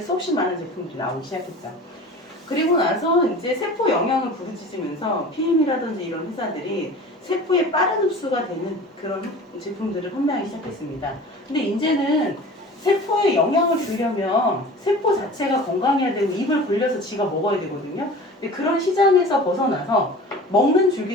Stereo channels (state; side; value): normal; both; correlation 0.39